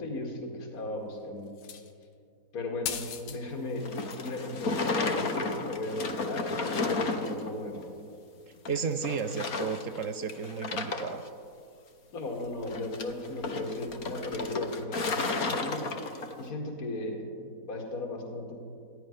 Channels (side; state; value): right; late; 4.3 ms